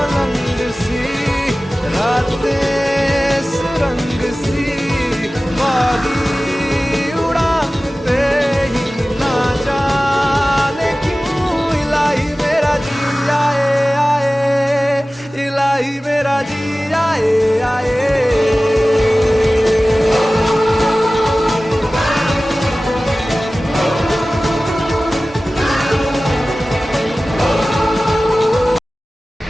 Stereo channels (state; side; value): normal; both; correlation 0.97